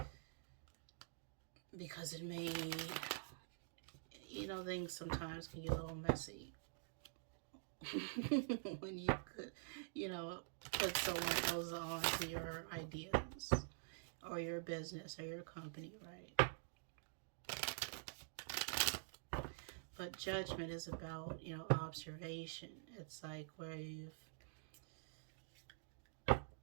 because it may, things sometimes can get a little messy when you could, put someone else on to your ideas. or your business or your company, right? But judgment is about, observation. It's like where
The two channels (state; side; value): silent; left; digital silence